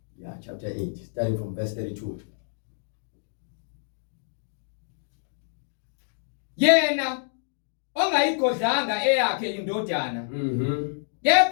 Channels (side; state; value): right; silent; digital silence